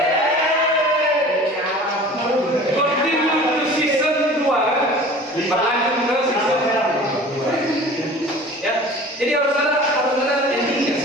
Berlanjut ke season ya, jadi harus ada endingnya.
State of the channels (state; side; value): normal; both; correlation 0.43